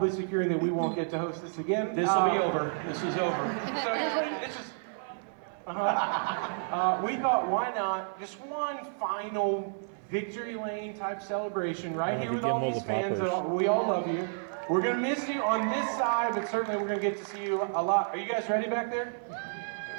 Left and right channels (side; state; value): left; silent; 57 dB below the other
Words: securing that we won't get to host this again. This will be over. This is over. So here's what it's just. We thought, why not just one final victory lane type celebration right here with all these fans. We all love you. We're gonna miss you on this side, but certainly we're gonna get to see you a lot. Are you guys ready back there?